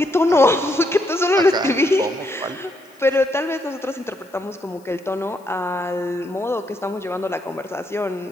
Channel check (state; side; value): noise; left; hiss, 30 dB below the sound